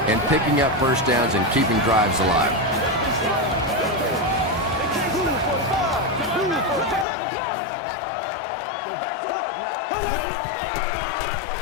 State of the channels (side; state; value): right; drops out; at 7.1 s